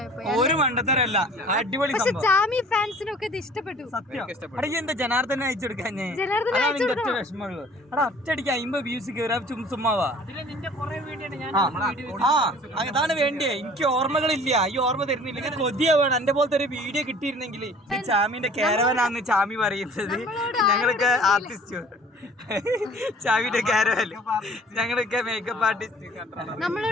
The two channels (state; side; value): normal; both; correlation 0.50